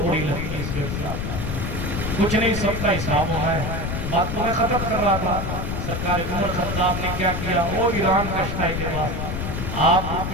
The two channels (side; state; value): left; noise; rumble, 3 dB below the sound